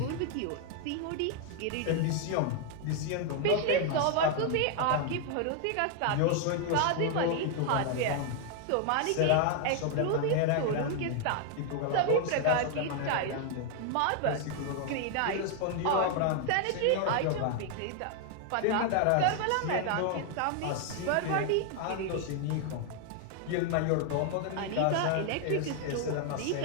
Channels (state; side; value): different; both; correlation 0.00